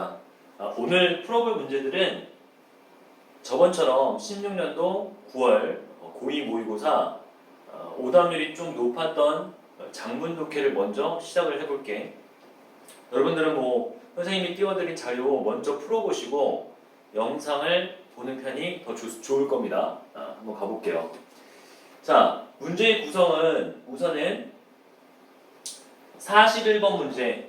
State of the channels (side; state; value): both; identical; correlation 1.00